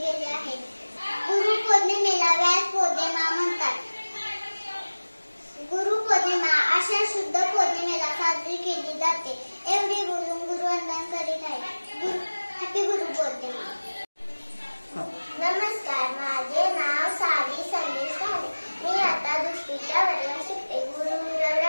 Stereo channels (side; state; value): both; inverted; correlation -1.00